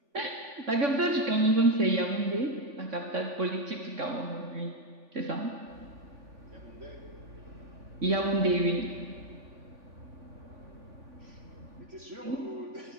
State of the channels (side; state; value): left; late; 3.6 ms